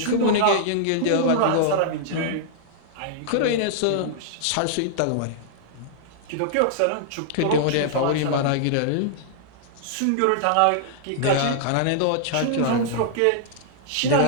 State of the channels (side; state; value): both; different; correlation -0.01